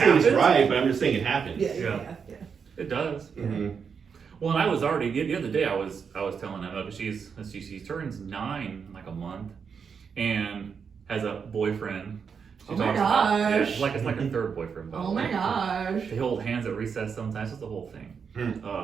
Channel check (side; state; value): left; quieter; 6.3 dB